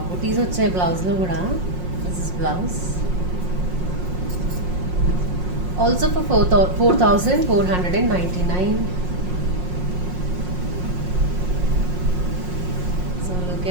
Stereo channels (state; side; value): late; left; 5.6 ms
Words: Butis వచ్చాయి బ్లౌజ్లో కూడా. This is blouse. Also for 4499. So look